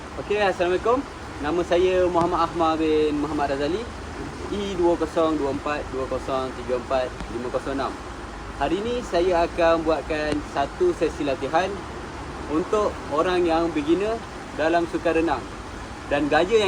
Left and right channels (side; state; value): both; identical; correlation 1.00